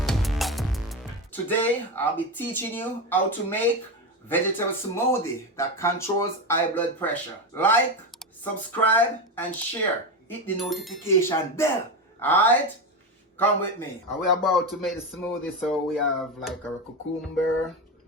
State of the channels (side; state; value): both; normal; correlation 0.16